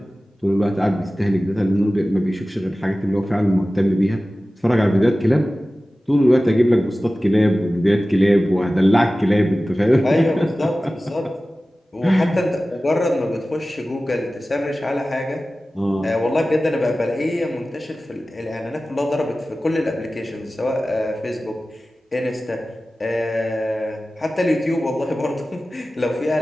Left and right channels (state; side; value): normal; both; correlation 0.96